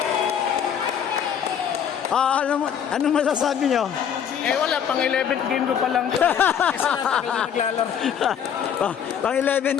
Ano masasabi nyo? Eh wala, pang 11th game ko pa lang. Kasi natagal na naglalaro. Pang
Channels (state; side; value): quieter; right; 8.4 dB